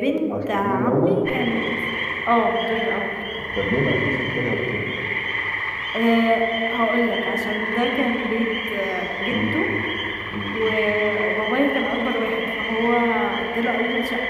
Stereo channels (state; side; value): identical; both; correlation 1.00